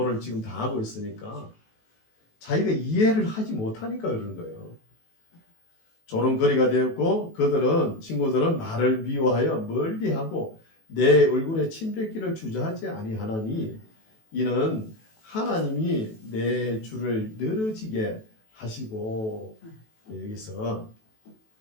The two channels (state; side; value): late; right; 18 ms